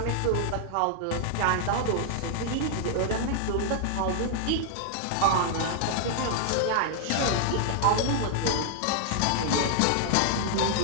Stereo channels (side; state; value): both; different; correlation -0.01